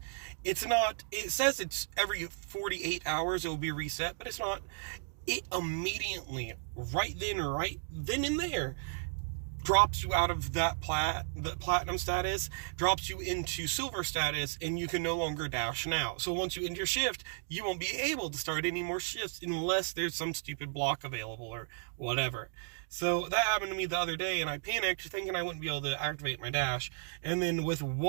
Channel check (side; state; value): left; silent; digital silence